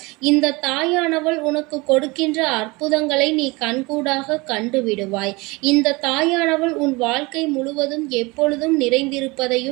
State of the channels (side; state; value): left; quieter; 24.5 dB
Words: இந்த தாயானவள் உனக்கு கொடுக்கின்ற அற்புதங்களை நீ கண்கூடாக கண்டுவிடுவாய். இந்த தாயானவள் உன் வாழ்க்கை முழுவதும் எப்பொழுதும்